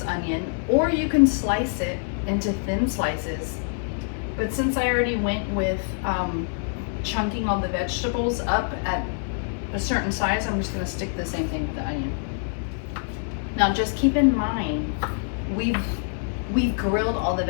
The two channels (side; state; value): right; silent; 62 dB below the other